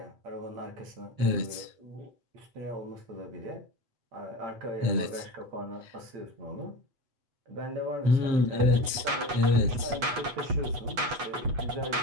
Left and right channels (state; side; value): late; left; 8.1 ms